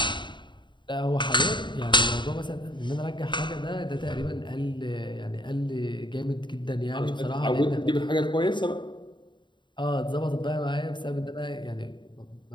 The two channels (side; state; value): right; late; 0.23 ms